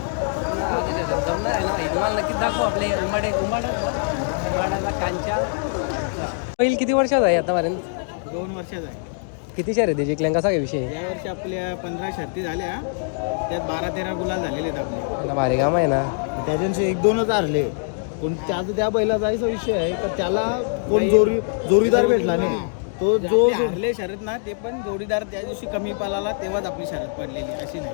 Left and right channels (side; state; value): right; silent; digital silence